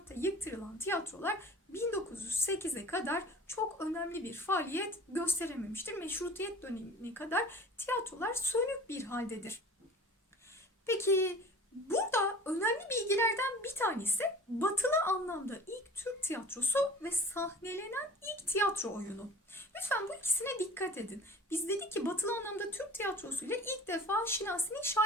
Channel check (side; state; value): both; normal; correlation 0.42